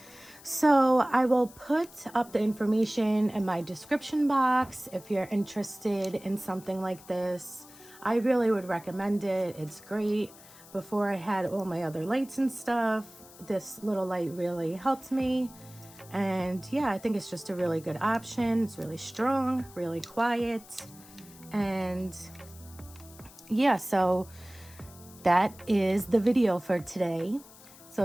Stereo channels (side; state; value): left; noise; hiss, 21 dB below the sound